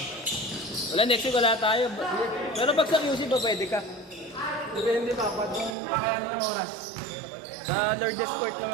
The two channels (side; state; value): left; drops out; at 5.8 s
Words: Wala, next week wala tayo. Pero pag sa QC ba pwede ka? Depende pa, pag yung kakayanin ng oras. Sa Lourdes Court